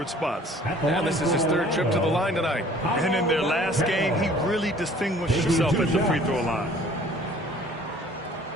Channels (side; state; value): both; normal; correlation 0.53